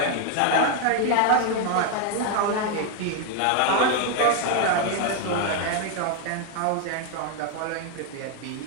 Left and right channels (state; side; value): different; both; correlation 0.00